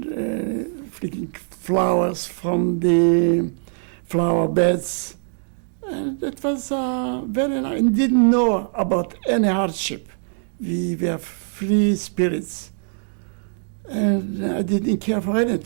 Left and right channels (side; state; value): left; silent; digital silence